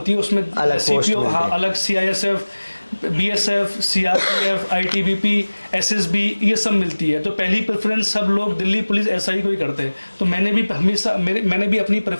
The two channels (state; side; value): inverted; both; correlation -1.00